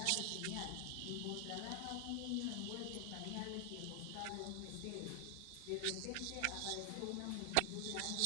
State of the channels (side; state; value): both; different; correlation 0.00